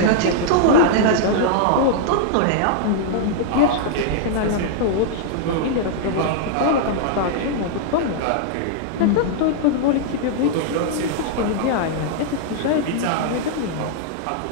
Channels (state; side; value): different; both; correlation -0.01